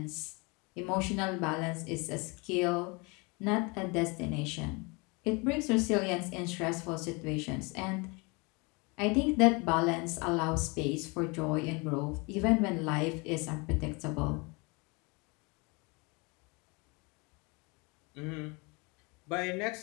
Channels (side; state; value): right; quieter; 28.7 dB